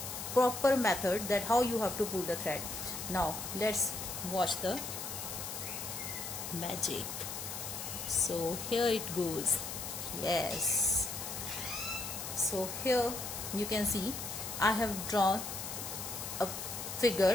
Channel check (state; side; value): noise; left; hiss, 6 dB below the sound